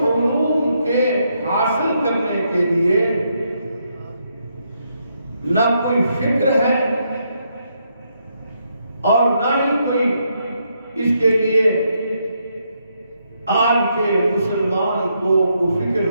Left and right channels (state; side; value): inverted; both; correlation -0.78